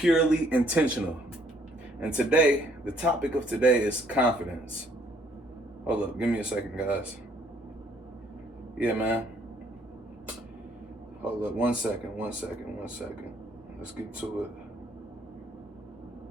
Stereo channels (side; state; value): both; normal; correlation 0.65